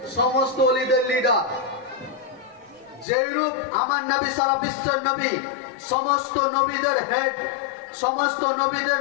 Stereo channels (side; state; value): right; drops out; at 3.1 s